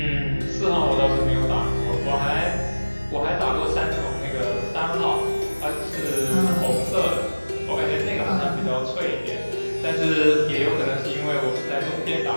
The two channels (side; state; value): both; inverted; correlation -1.00